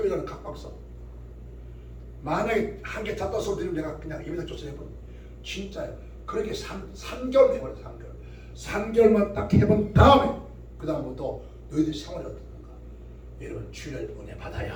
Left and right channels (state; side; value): identical; both; correlation 1.00